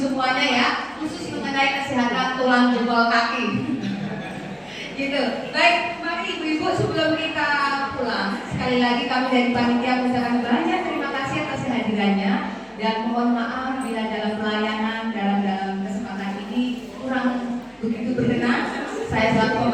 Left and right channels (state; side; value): identical; both; correlation 1.00